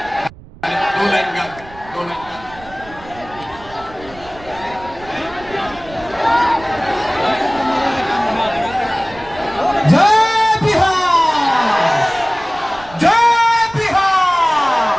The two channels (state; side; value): noise; right; rumble, 20 dB below the sound